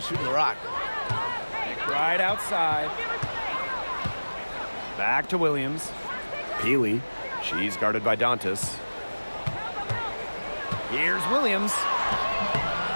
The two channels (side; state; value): both; inverted; correlation -1.00